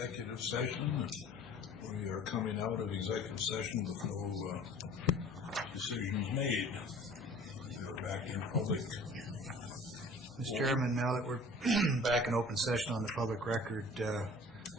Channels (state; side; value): normal; both; correlation 0.47